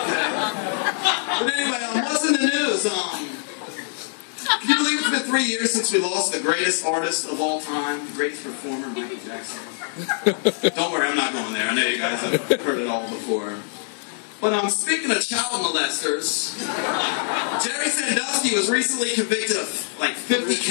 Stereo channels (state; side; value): silent; right; 63 dB below the other